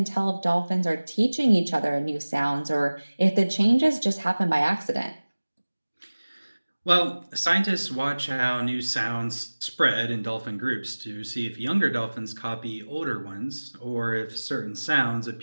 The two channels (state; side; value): inverted; both; correlation -1.00